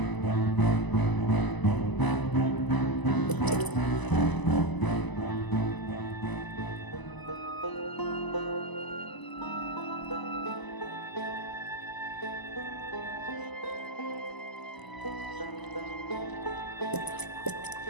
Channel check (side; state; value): right; late; 1.0 ms